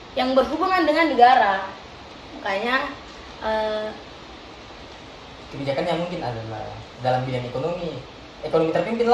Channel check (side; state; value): both; identical; correlation 1.00